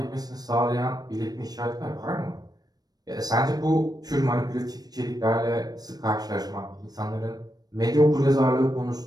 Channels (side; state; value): left; late; 0.19 ms